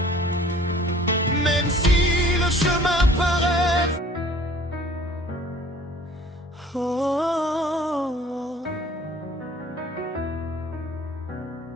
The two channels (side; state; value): both; normal; correlation 0.52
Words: Même si le chemin paraît